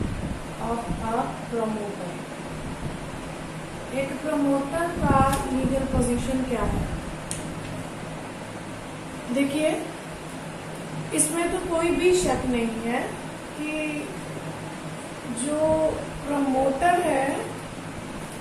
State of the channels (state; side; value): identical; both; correlation 1.00